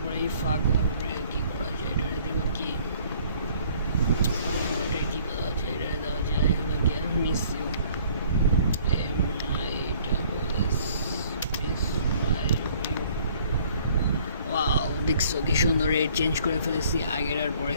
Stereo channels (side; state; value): both; inverted; correlation -0.57